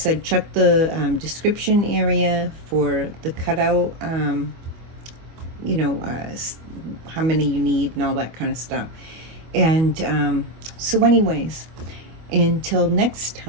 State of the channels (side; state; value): left; late; 25 ms